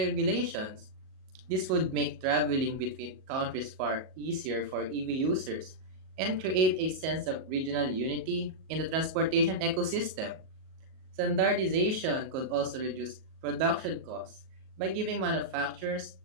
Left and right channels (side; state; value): left; late; 38 ms